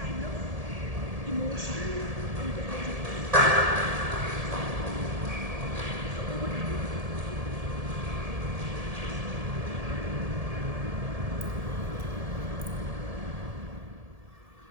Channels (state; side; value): late; left; 1.7 ms